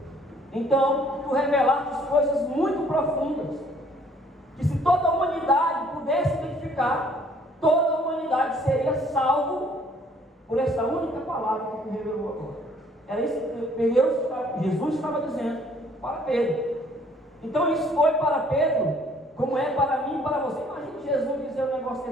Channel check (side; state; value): both; normal; correlation 0.60